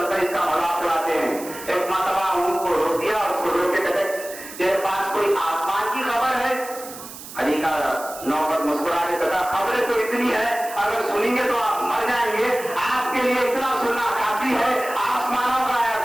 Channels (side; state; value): right; noise; hiss, 14 dB below the sound